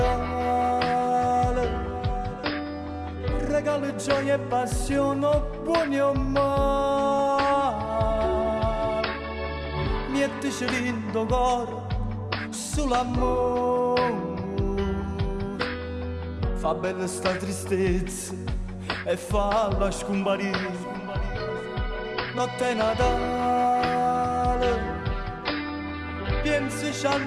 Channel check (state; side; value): identical; both; correlation 1.00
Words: Regalo gioia e passione, buoni o male. Mettici lindo cuore sull'amore. Fa bella sta tristezza e falla scomparire. Notte Natale, pensaci